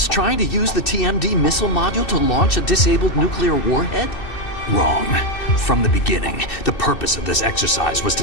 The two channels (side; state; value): right; late; 2.6 ms